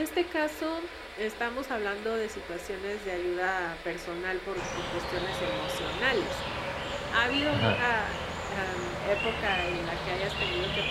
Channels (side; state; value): both; identical; correlation 1.00